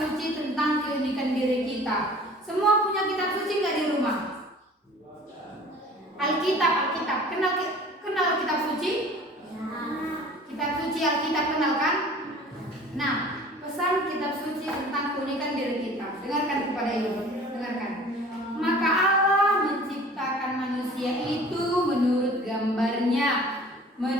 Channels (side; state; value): both; normal; correlation 0.46